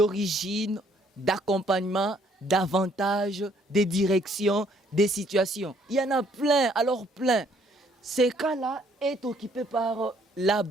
d'accompagnement, d'avantages, des directions, des situations. Il y en a plein, alors plein. Ces cas-là est occupé par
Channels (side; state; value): both; normal; correlation 0.65